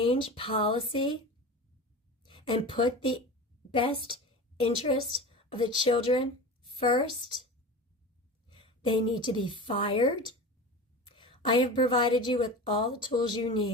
policy and put the best interest of the children first, they need to be fired. I have provided you with all the tools you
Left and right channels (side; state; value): both; normal; correlation 0.31